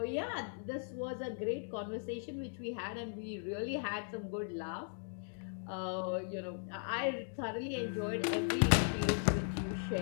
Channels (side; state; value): right; silent; digital silence